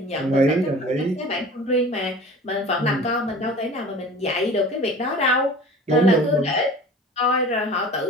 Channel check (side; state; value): both; normal; correlation 0.41